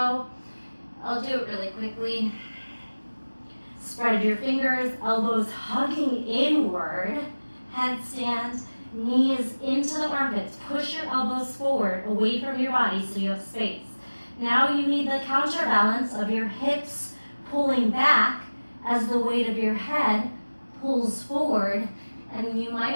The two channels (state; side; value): inverted; both; correlation -1.00